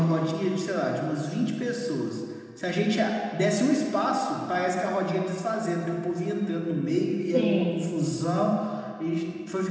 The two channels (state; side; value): identical; both; correlation 1.00